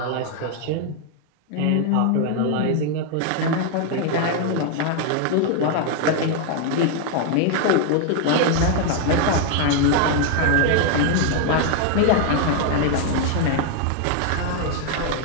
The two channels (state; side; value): different; both; correlation 0.00